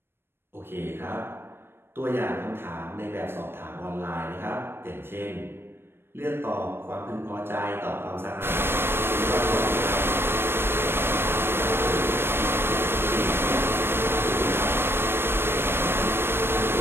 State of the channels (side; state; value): left; late; 0.11 ms